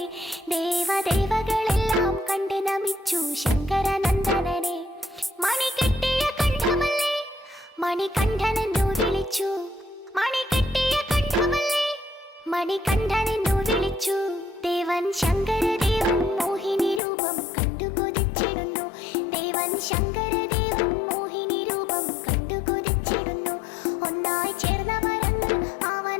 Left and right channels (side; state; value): right; drops out; at 17.0 s